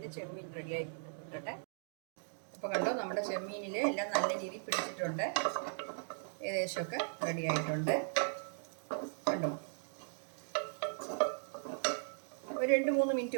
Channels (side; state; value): left; silent; digital silence